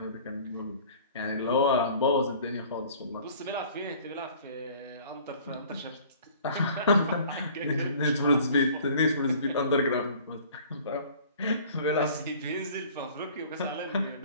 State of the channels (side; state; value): both; inverted; correlation -0.49